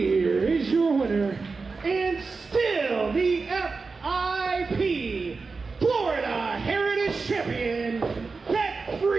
is your winner, and still the FIP Florida Heritage Champion, that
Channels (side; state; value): left; quieter; 4.3 dB